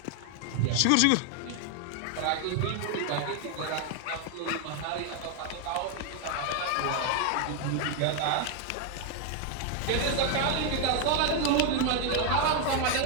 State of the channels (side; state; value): both; different; correlation 0.00